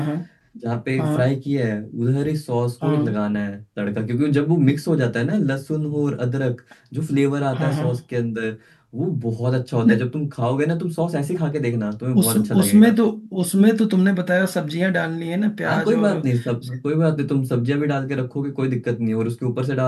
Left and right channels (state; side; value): identical; both; correlation 1.00